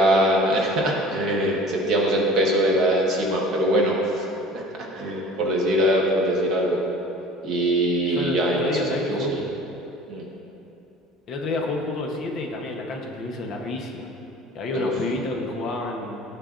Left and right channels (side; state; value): both; normal; correlation 0.45